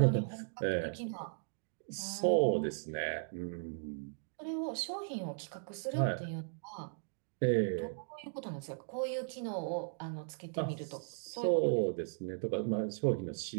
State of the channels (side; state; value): left; silent; digital silence